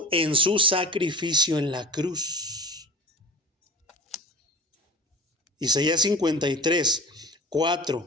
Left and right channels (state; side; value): normal; both; correlation 0.34